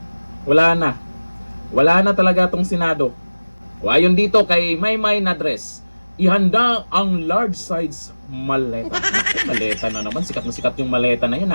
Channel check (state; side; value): inverted; both; correlation -1.00